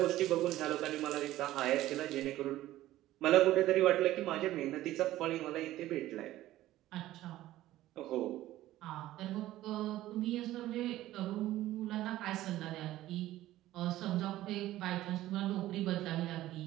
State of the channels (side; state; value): left; quieter; 15.0 dB